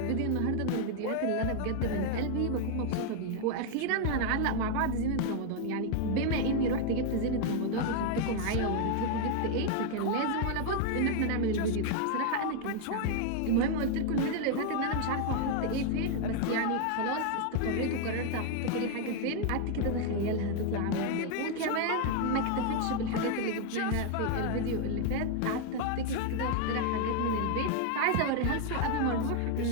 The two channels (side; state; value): both; different; correlation 0.00